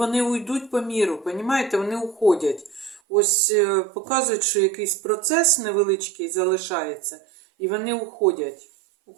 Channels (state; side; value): drops out; left; at 3.0 s